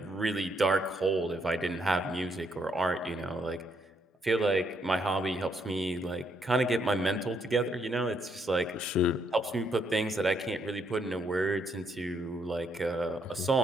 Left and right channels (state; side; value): normal; both; correlation 0.73